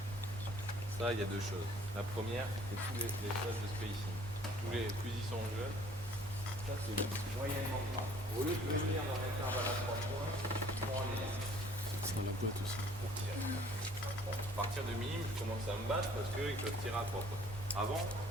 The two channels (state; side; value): normal; both; correlation 0.56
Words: Ça, il y a deux choses. La première, c'est tous les phases de spacing. Plus ils sont jeunes, ça c'est moyennement grave. Au lieu de venir dans l'intervalle à 3 points, ils vont aller là. C'est la boîte aussi. Pour tirer. Bon, à partir de minime, je commence à me battre parce qu'ils peuvent tirer à 3 points. Avant,